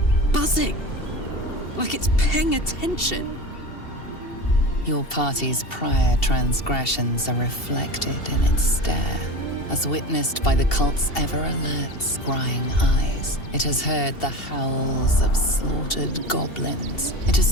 buzzing. Like it's paying attention. Your party's prior transgressions are reflected in its stare, as witnessed by the cult's ever-alert, scrying eyes. It has heard the howls of slaughtered goblins. It has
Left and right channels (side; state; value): right; late; 2.7 ms